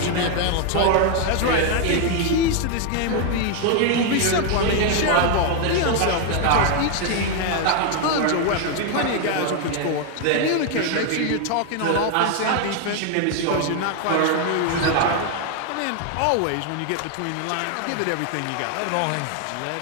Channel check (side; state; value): both; different; correlation 0.01